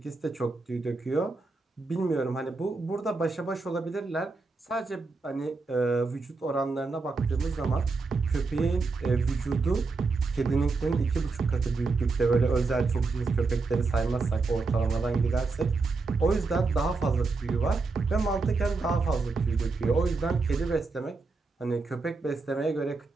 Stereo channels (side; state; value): left; quieter; 3.9 dB